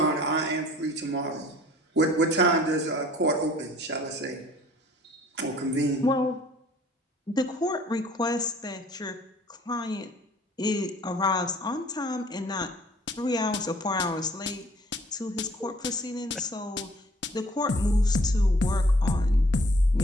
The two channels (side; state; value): both; normal; correlation 0.55